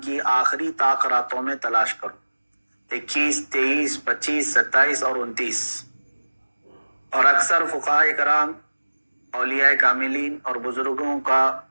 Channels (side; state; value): both; inverted; correlation -1.00